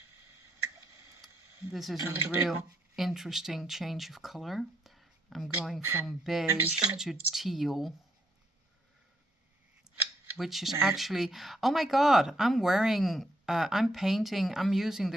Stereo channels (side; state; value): both; normal; correlation 0.74